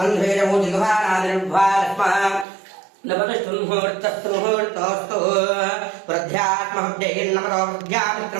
జిఘ్వానాదిర్భ్వాస్మ నమస్తముహూర్తస్తముహూర్తోస్తు వృద్ధ్యాత్మహృదయన్నమతో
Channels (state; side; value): drops out; left; at 2.5 s